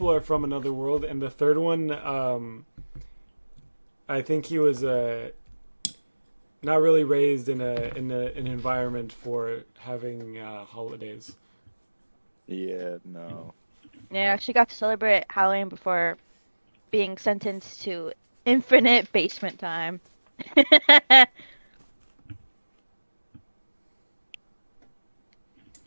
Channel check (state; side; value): inverted; both; correlation -1.00